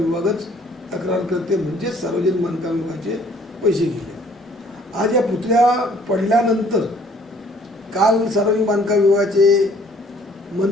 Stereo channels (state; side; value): normal; both; correlation 0.58